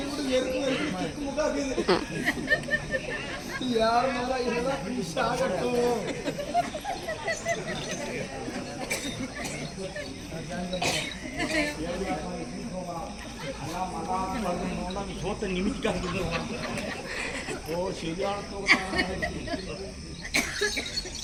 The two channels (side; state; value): both; identical; correlation 1.00